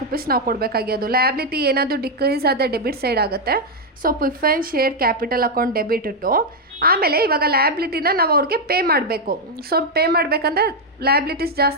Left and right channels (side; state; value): both; normal; correlation 0.01